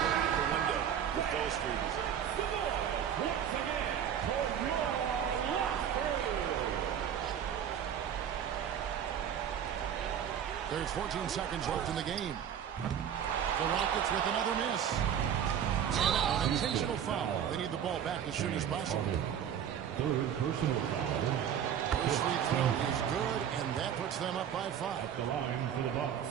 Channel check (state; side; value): quieter; left; 9.0 dB